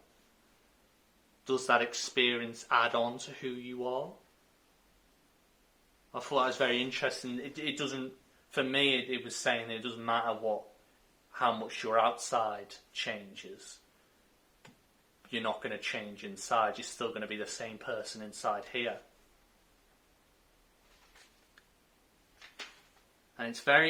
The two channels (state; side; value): identical; both; correlation 1.00